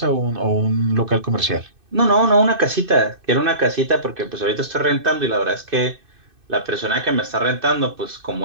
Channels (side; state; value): left; late; 2.6 ms